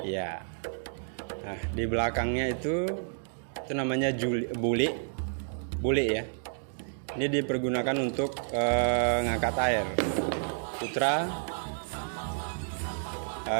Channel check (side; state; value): left; silent; digital silence